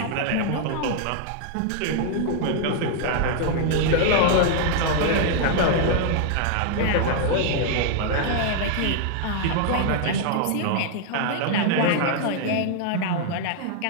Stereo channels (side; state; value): both; different; correlation 0.00